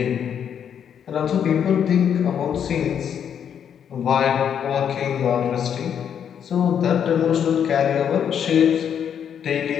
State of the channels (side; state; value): right; quieter; 8.4 dB